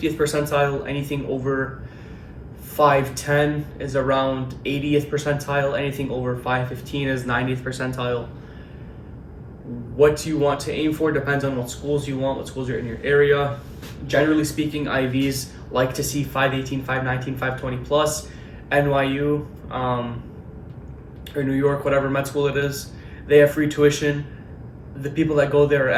percentile. Anything over 510 is around 80th percentile. Anything over 515 is 90th percentile. What you want to aim for depends on what schools you want, what schools are in your area. Generally speaking, IVs like to see 518, 519, 520 plus. NYU or New York, whatever med school it is, they have free tuition. The people that go there are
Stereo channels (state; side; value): identical; both; correlation 1.00